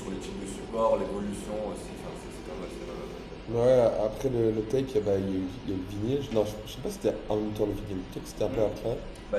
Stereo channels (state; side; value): identical; both; correlation 1.00